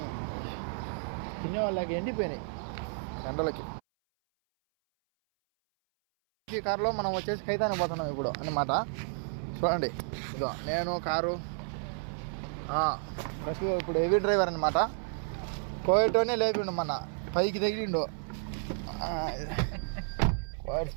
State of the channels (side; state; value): left; silent; 57 dB below the other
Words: తినే వాళ్ళకి ఎండిపోయినాయి ఎండలకి. ఈ కారులో మనం వచ్చేసి ఖైతానికి పోతున్నాం ఇప్పుడు అన్నమాట. చూడండి ఇదో నేను కారు ఫస్ట్ ఇప్పుడు హెవీ డ్రైవర్ అనమాట. కోయటోనే లేపిండు మన పైకి తగిలిండు.